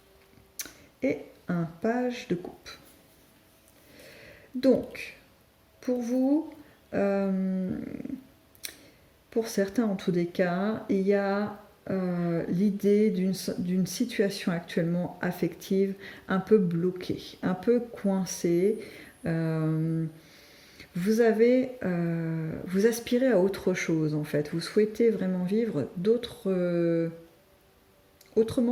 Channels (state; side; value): identical; both; correlation 1.00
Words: et un page de coupe. Donc, pour vous, pour certains en tous les cas, il y a l'idée d'une situation actuellement affective un peu bloquée, un peu coincée. Vous aspirez à autre chose en fait. Vous souhaitez vraiment vivre